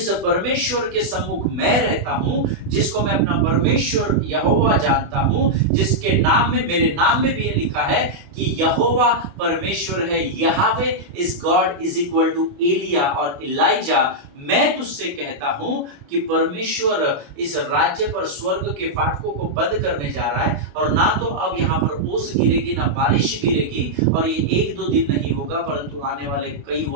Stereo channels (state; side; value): late; left; 28 ms